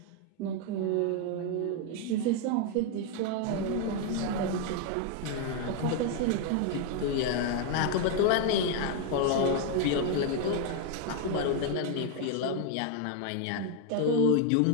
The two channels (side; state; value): both; different; correlation 0.00